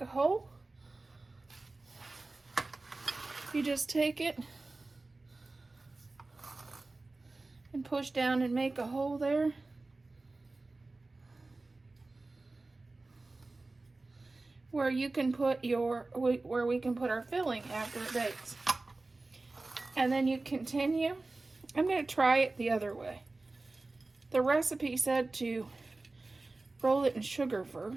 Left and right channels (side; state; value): left; quieter; 3.3 dB